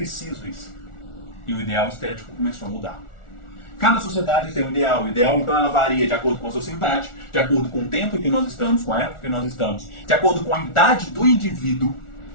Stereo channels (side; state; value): right; late; 1.4 ms